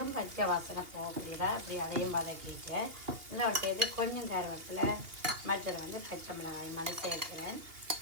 பச்சை வாசனை போகிறதா இப்படி அதையும் வதக்கிட்டு இதோட சேர்த்து கொஞ்சம் கருவேப்பிலை மற்றது வந்து பச்சை மிளகாய் மாதிரி சேர்க்கிறேன்.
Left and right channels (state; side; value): late; left; 2.8 ms